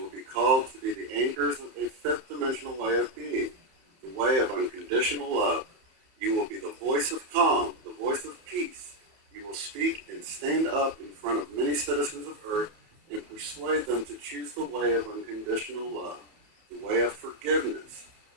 will be called to be the anchors of a fifth dimensional way of being, the way of unconditional love. You will be the voice of calm, the voice of peace. You will speak and stand up in front of many citizens of Earth and persuade them to choose the way of unconditional love, the way of forgiveness,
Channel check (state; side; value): late; left; 31 ms